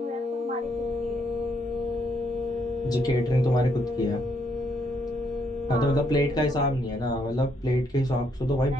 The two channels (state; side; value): normal; both; correlation 0.73